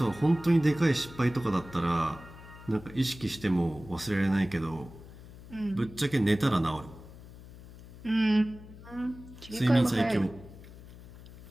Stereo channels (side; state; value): left; noise; hum, 18 dB below the sound